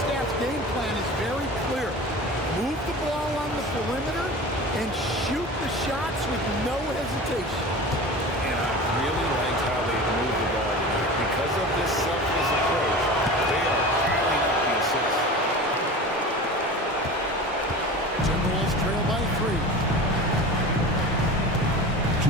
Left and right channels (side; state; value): both; normal; correlation 0.34